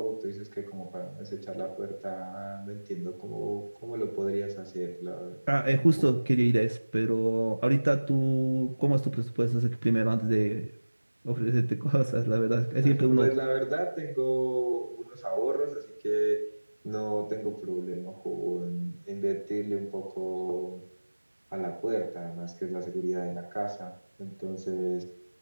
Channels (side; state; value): both; inverted; correlation -1.00